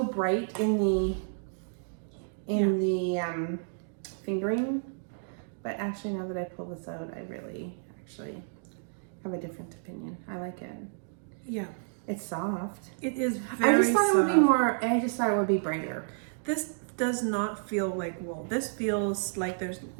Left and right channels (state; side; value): silent; left; digital silence